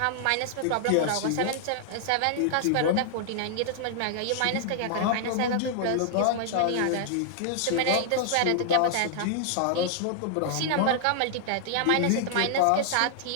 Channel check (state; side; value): different; both; correlation -0.01